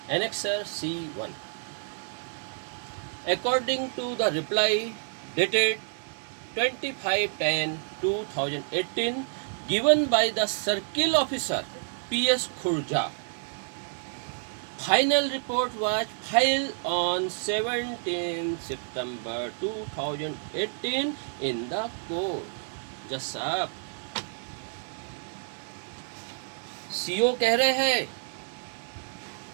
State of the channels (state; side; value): silent; left; digital silence